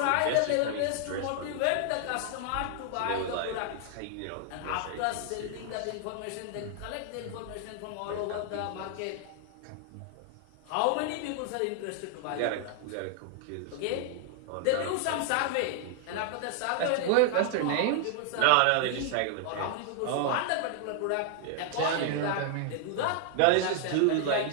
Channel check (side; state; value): both; different; correlation 0.00